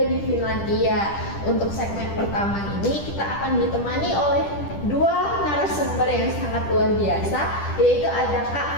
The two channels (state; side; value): late; right; 10 ms